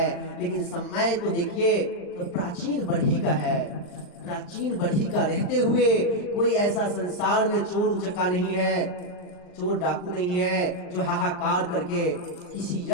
लेकिन समय तो देखिए तो प्राचीन बढ़ी का है। प्राचीन बढ़ी का रहते हुए कोई ऐसा संसार में चोर उचक्का नहीं है, चोर डाकू नहीं है जो हाहाकार करके किसी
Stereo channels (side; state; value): right; late; 39 ms